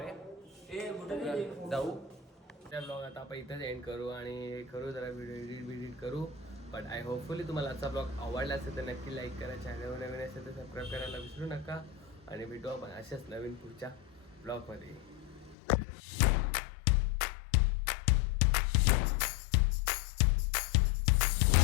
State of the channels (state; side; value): drops out; right; at 15.6 s